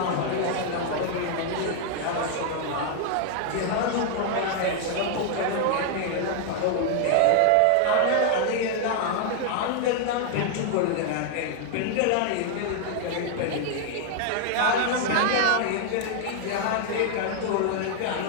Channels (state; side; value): different; both; correlation 0.00